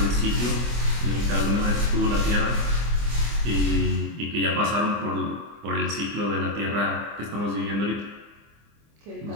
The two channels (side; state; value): left; late; 25 ms